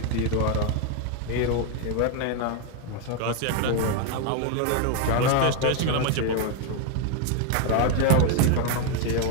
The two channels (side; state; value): both; different; correlation 0.01